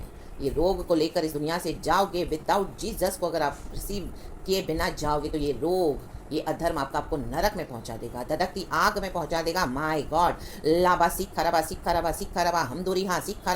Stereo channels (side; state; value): both; identical; correlation 1.00